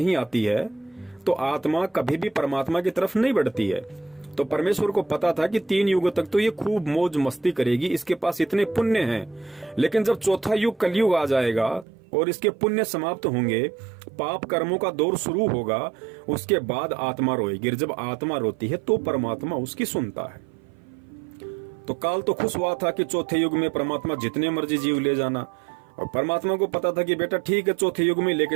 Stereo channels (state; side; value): drops out; left; at 11.9 s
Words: आती है तो आत्मा कभी भी परमात्मा की तरफ नहीं बढ़ती है। तो परमेश्वर को पता था कि 3 युग तक तो ये खूब मौज मस्ती करेगी, इसके पास इतने पुण्य हैं। लेकिन जब चौथा युग कलयुग आ जाएगा और इसके पुण्य समाप्त होंगे, पाप कर्मों का दौर शुरू होगा, उसके बाद आत्मा रोएगी। जब आत्मा रोती है तो परमात्मा उसकी सुनता है। तो काल तो खुश हुआ था कि चौथे युग में परमात्मा जितने मर्जी जीव ले जाना, और परमात्मा को पता था कि बेटा ठीक है, चौथे युग में लेके